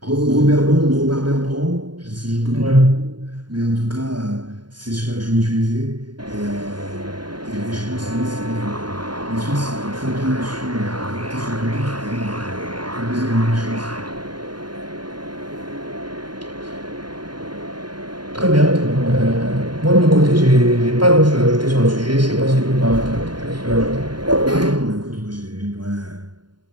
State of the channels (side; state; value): left; late; 0.71 ms